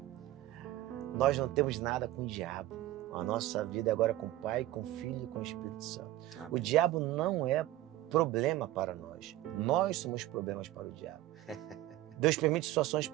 Nós não temos nada com o diabo. A nossa vida é agora com o Pai, com o Filho e com o Espírito Santo. Amém. O diabo não é problema para nós. Nós somos problemas para o diabo. Deus permite situações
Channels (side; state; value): left; quieter; 15.1 dB